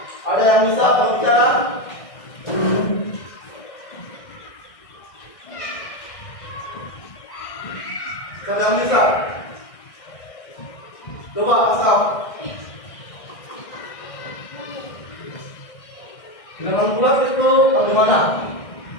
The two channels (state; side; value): late; right; 1.6 ms